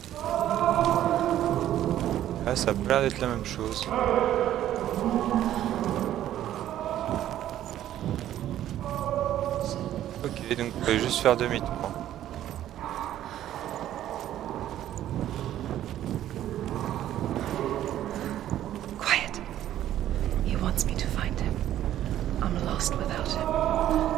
Là ça a pas l'air d'être la même chose. Ok. Ok, donc je vais juste faire demi-tour. Quiet. He wants me to find him. I'm lost without him.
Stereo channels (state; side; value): quieter; left; 12.3 dB